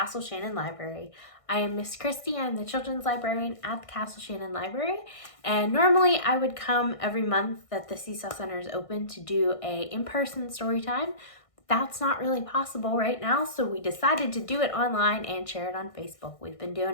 Shannon Library. I am Miss Christy. I'm the children's librarian at the Castle Shannon Library, and normally I would come every month that the Seesaw Center is open to do a in-person story time. That's not really possible right now, so we decided to do it online and share it on Facebook. We've been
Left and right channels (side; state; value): right; late; 1.6 ms